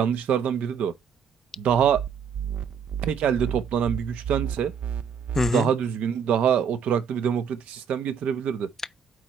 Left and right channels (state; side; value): quieter; left; 6.9 dB